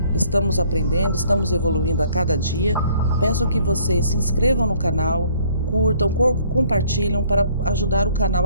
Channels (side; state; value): both; inverted; correlation -0.61